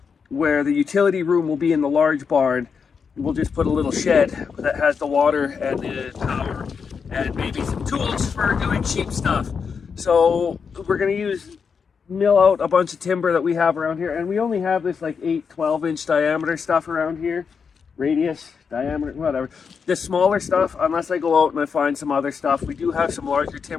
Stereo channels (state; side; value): quieter; right; 6.0 dB